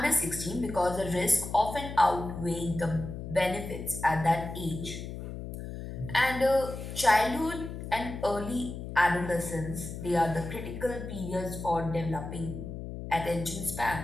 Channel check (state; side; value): noise; left; hum, 8 dB below the sound